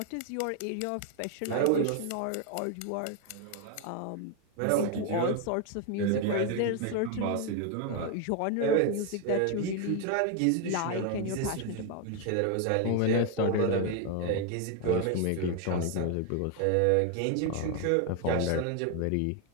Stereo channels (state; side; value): different; both; correlation 0.01